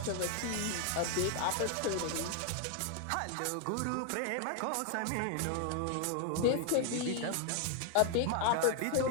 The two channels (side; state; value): both; different; correlation 0.00